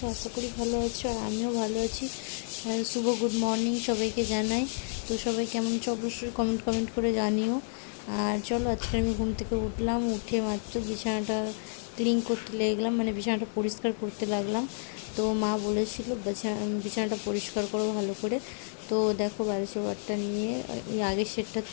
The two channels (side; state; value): right; silent; 56 dB below the other